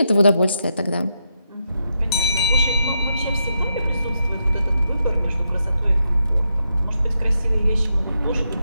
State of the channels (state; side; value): inverted; both; correlation -0.83